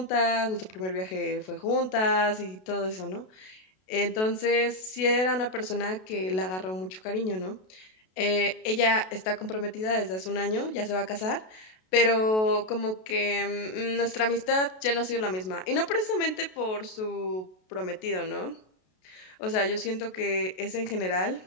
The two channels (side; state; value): right; late; 32 ms